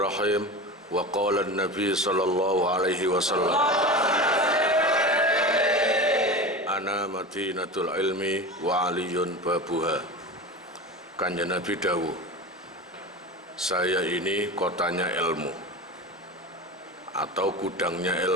Wa qala an-nabi sallallahu alaihi wasallam, ana madinatul ilmi wa aliyun babuha. Kanjeng Nabi dawuh, saya ini kotanya ilmu atau gudangnya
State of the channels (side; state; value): both; normal; correlation 0.29